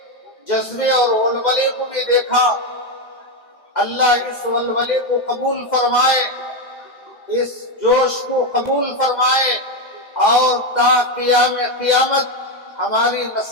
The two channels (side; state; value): right; late; 2.0 ms